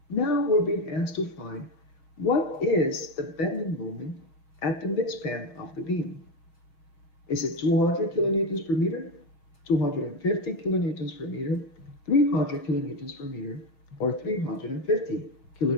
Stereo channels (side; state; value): right; late; 6.2 ms